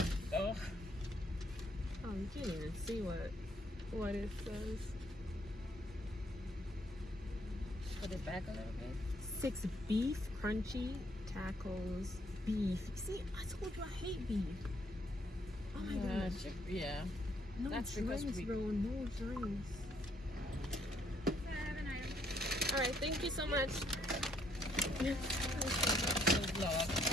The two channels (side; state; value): both; normal; correlation 0.68